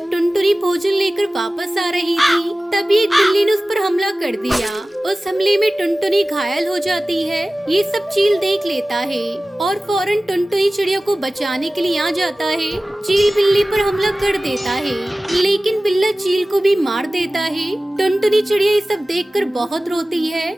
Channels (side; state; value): both; normal; correlation 0.97